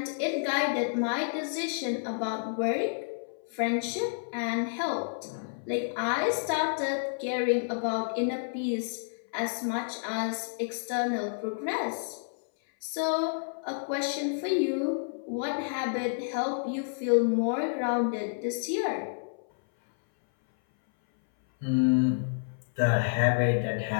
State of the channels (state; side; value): silent; right; 58 dB below the other